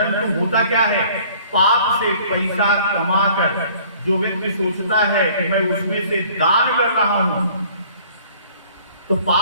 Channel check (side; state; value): both; inverted; correlation -0.54